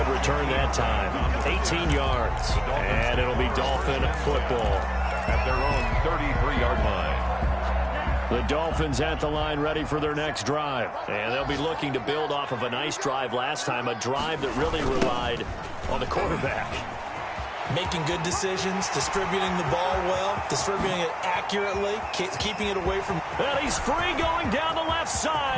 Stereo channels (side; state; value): both; identical; correlation 1.00